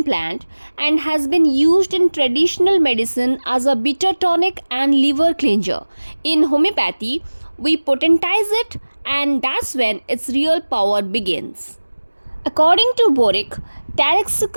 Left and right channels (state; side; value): inverted; both; correlation -1.00